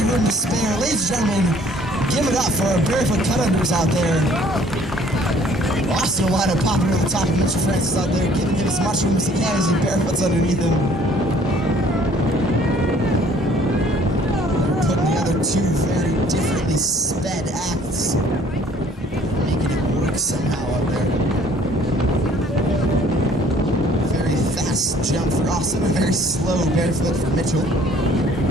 room to spare. Ladies and gentlemen, give it up for our barefoot cut-unders out there. Austin Olana popping over the top of Mitchell Francis out there, giving him as much room as he can as he barefoots underneath him. They're putting together two very differently sped acts, making it work somehow out there. Very fast jump for Austin, a very slow barefoot for Mitchell.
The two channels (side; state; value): both; normal; correlation 0.57